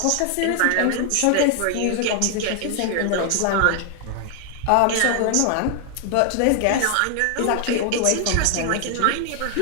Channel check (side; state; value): both; different; correlation 0.00